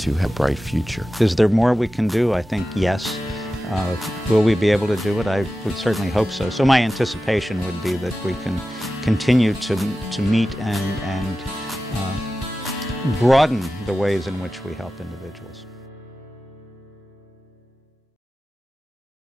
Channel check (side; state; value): both; normal; correlation 0.94